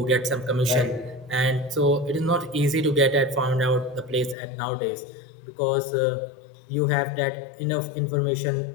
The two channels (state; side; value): drops out; right; at 4.4 s